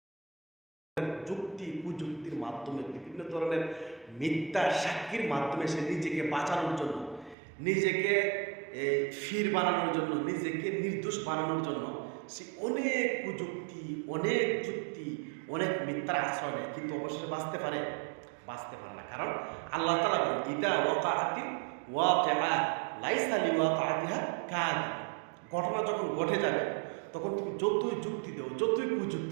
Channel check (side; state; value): left; drops out; at 7.4 s